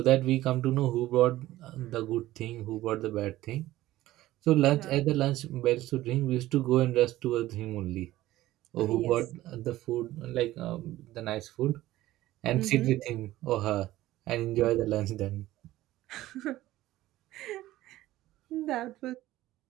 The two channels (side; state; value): left; quieter; 15.8 dB